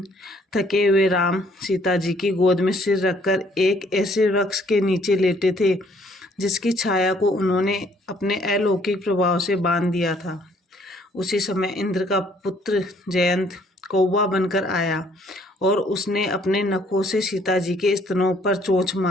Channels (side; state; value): both; normal; correlation 0.63